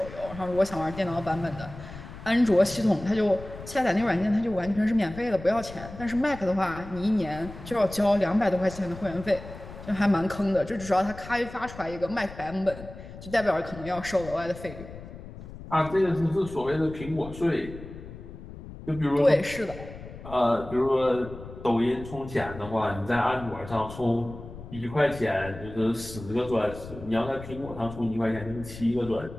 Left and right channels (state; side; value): noise; left; rumble, 14 dB below the sound